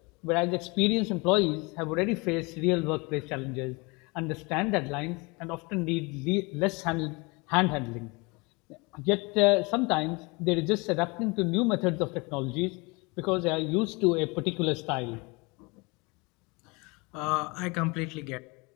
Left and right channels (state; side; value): quieter; right; 27.5 dB